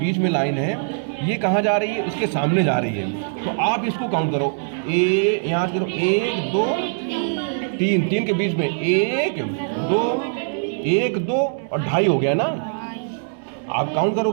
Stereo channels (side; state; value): left; silent; digital silence